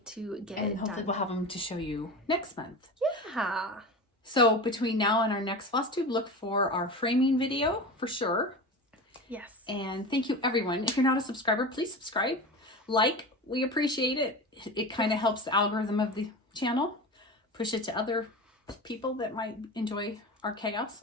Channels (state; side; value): normal; both; correlation 0.29